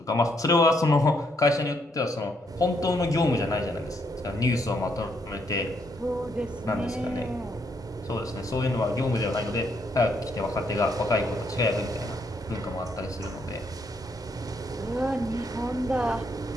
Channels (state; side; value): normal; both; correlation 0.74